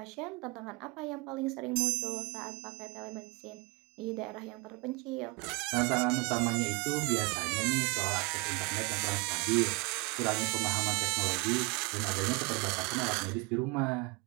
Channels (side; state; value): left; quieter; 28.4 dB